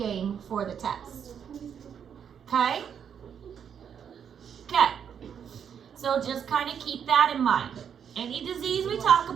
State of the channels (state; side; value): quieter; left; 7.9 dB